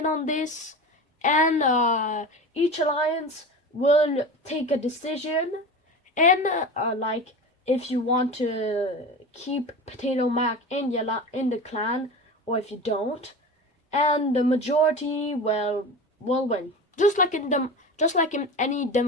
on this, and each alliance will take a decision, and like if you want to keep Potato Mac in the clan, or if you don't, and the majority will win, just like in any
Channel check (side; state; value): both; normal; correlation 0.30